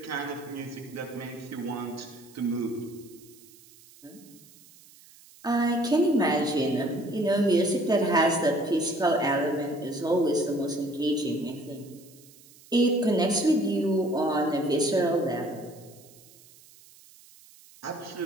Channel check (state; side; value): noise; right; hiss, 24 dB below the sound